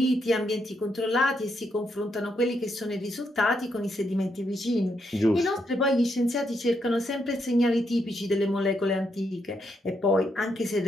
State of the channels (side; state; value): both; normal; correlation 0.79